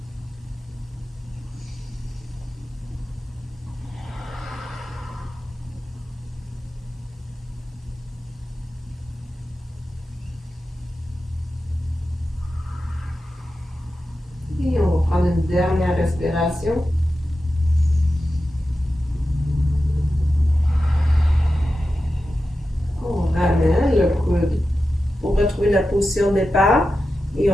Et on va prendre une dernière respiration. On ramène le coude pour retrouver la position de départ et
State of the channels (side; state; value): both; normal; correlation 0.92